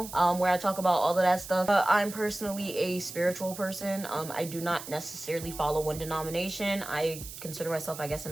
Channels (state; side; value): noise; right; hiss, 12 dB below the sound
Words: where I talk about all of that stuff. I'm personally a spiritual person. I do not necessarily follow one denomination. I consider myself, I guess,